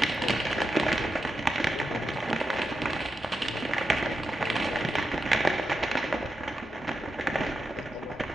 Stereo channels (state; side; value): normal; both; correlation 0.87